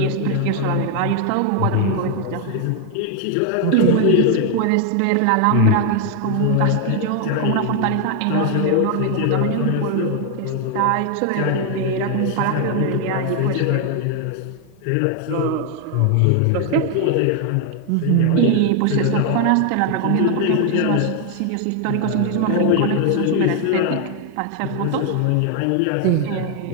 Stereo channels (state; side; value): different; both; correlation 0.00